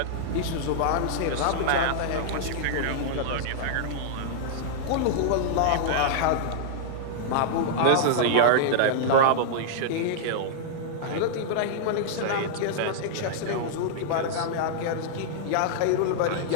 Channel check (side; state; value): both; different; correlation -0.01